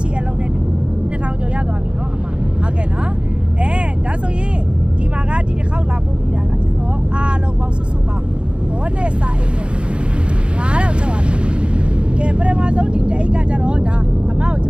ရှိအလုံးနဲ့2000ကျော်ရသွားပြီနော်အမဟုတ်ကဲ့နော်ဒါဆိုရင်ဒီမှာကဒီတစ်ခေါက်လာပို့ပြီးတာကကျွန်တော်အားလုံးပေါင်းစုစုပေါင်းဘောနဲ့စာအိတ်နဲ့9000ကျော်ပါတယ်ကဲပထမဆုံးဒီတအိတ်ကကြတော့ဒါအမကိုကျ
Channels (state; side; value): late; left; 0.056 ms